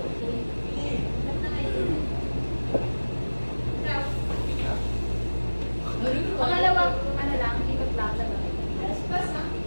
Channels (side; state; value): both; inverted; correlation -1.00